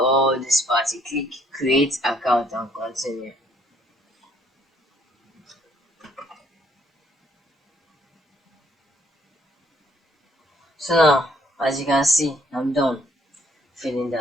this part, you click create account and continue. So now, as you can see, I'm done filling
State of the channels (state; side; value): normal; both; correlation 0.66